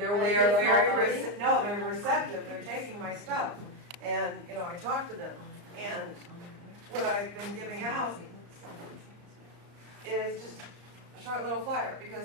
waking up? No, they're receptive. They're taking my stuff, and you know, I talk to them, and what I've been giving out is just a short little flyer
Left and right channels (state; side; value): late; left; 34 ms